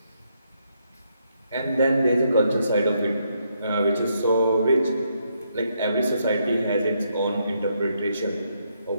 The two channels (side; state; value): both; inverted; correlation -0.76